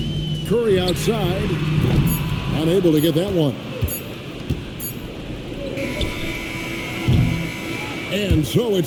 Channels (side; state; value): both; identical; correlation 1.00